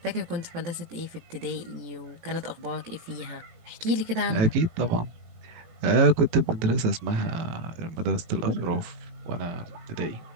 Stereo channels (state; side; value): late; left; 18 ms